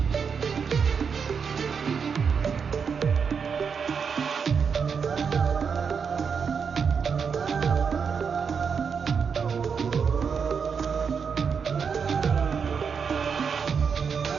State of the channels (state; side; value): quieter; left; 6.2 dB